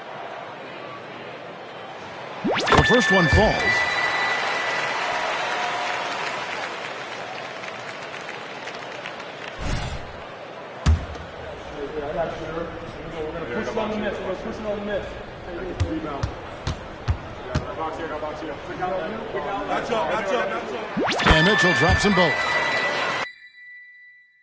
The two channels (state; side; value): identical; both; correlation 1.00